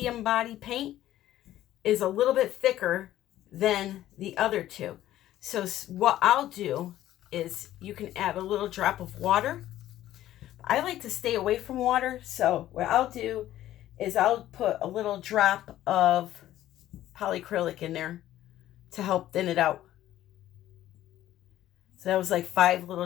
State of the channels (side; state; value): right; quieter; 13.5 dB